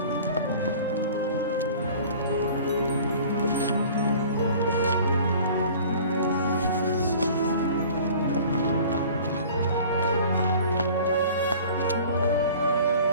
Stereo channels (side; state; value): both; inverted; correlation -0.46